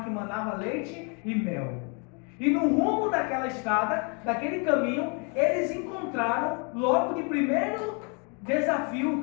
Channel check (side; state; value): right; quieter; 35.8 dB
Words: que manava leite e mel. E no rumo daquela estrada, daquele caminho, eles encontraram logo de primeiro desafio o